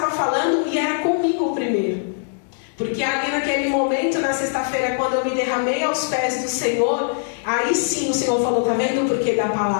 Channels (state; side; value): silent; right; digital silence